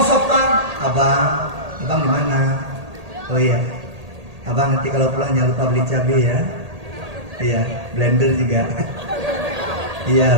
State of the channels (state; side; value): late; left; 1.8 ms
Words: Abang di mana? Oh iya. Abang nanti kalau pulang jangan lupa beli cabai ya. Iya, blender juga. Iya